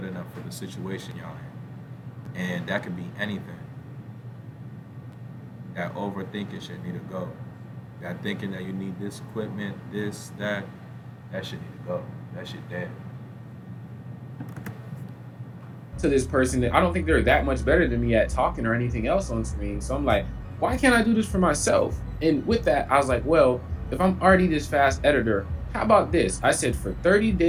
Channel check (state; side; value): identical; both; correlation 1.00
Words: enough for the situation y'all in, and that could be anything. That overthinking shit need to go. Got thinking that you need this equipment, this, that. That shit need to go. That shit dead. To this person that I don't think they're that much better than me at talking or anything else on screen. So I'm like, why can't I do this for myself? And with that, I was like, well, if I'm already this fast editor, how about this? I said for 30